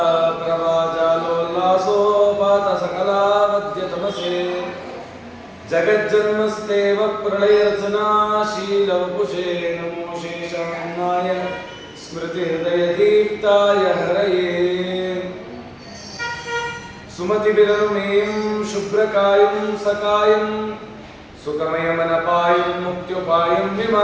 प्रभाजालोल्लासोपात सकला वद्य तमसे जगज्जन्मस्तेव प्रलयरचनाशील वपुषे नमो शेषान्नाय स्मृति हृदय दीप्ताय हरये सुमति विरनुमेयं शुभ्रकायं सकायं सुखमयमनपायं मुक्त्युपायं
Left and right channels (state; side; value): identical; both; correlation 1.00